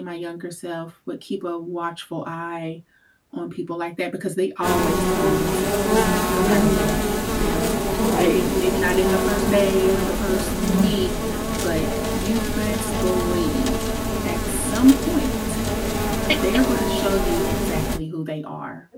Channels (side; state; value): both; identical; correlation 1.00